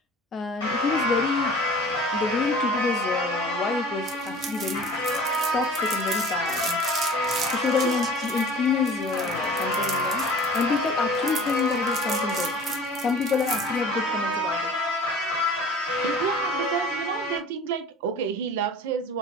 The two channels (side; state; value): both; normal; correlation 0.43